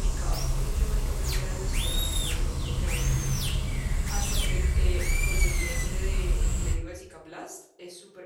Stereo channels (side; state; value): both; identical; correlation 1.00